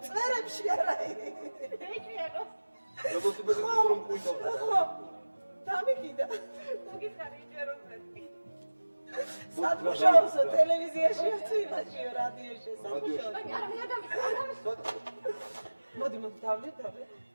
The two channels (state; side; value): inverted; both; correlation -1.00